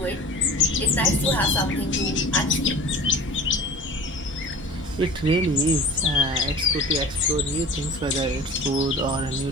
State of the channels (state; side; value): normal; both; correlation 0.39